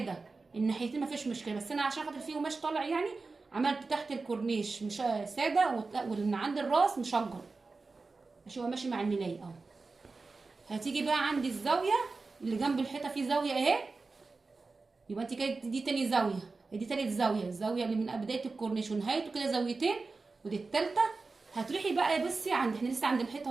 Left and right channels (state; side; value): quieter; left; 3.9 dB